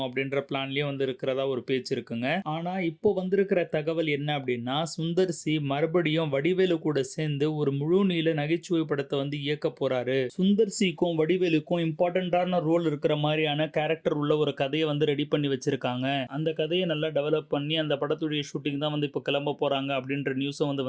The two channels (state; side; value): identical; both; correlation 1.00